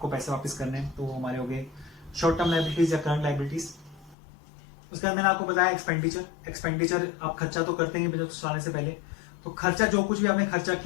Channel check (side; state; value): right; drops out; at 4.2 s